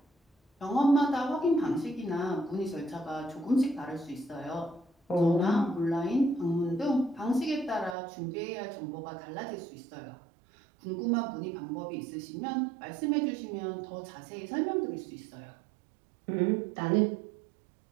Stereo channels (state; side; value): drops out; left; at 8.0 s